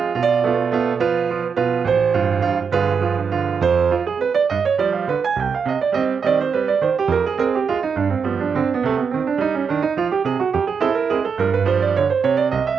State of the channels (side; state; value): left; quieter; 5.9 dB